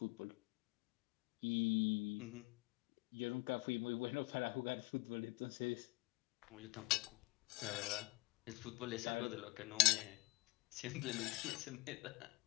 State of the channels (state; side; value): quieter; right; 23.6 dB